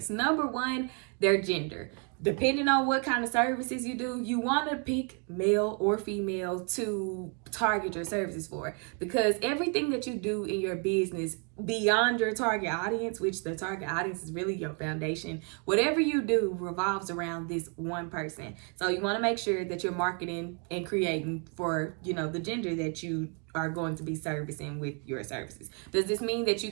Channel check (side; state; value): left; quieter; 37.8 dB